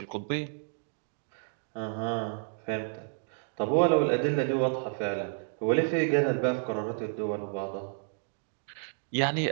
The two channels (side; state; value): left; silent; digital silence